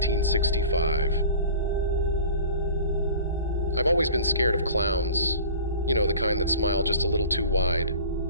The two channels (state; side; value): inverted; both; correlation -0.42